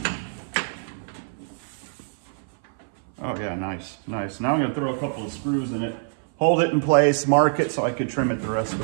Oh yeah, nice, nice. Now I'm gonna throw a couple of screws in it, hold it in place, mark it so I could trim it the rest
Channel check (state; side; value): silent; left; 57 dB below the other